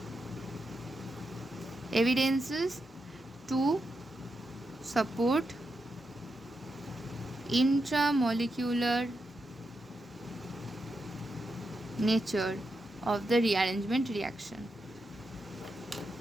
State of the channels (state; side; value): normal; both; correlation 0.86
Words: to support intramolecular nature of the rearrangement reaction.